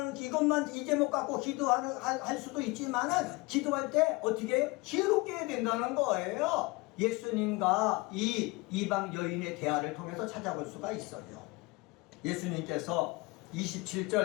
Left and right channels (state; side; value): quieter; right; 24.2 dB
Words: 이 제목 갖고 할 수도 있지만은, 기도할 때 어떻게 해요? 지혜롭게 해야 된다는 거예요. 예수님과 이 이방 여인의 대화를 통해서 찾아볼 수가 있어요. 예수님께서